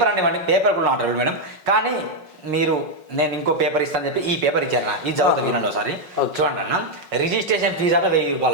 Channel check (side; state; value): left; late; 5.5 ms